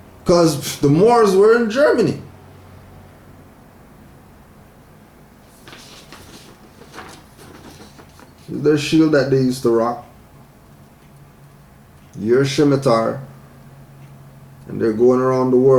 Because the Moors were in Germany. Their shield that they used to rock. Your scimitar. And they're going around the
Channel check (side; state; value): both; identical; correlation 1.00